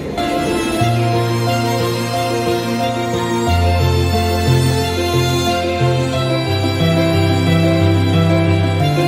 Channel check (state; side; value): identical; both; correlation 1.00